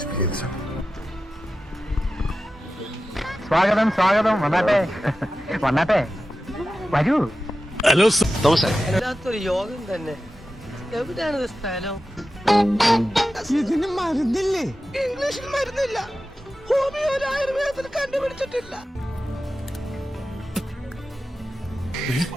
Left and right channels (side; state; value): both; normal; correlation 0.93